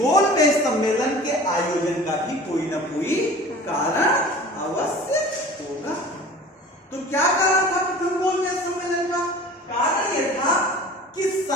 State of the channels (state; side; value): normal; both; correlation 0.42